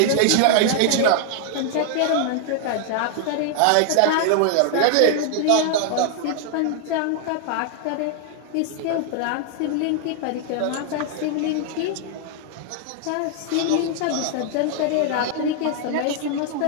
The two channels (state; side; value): different; both; correlation 0.00